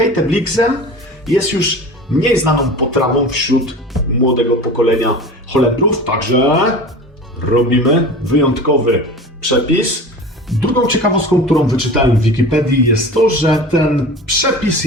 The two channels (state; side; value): normal; both; correlation 0.35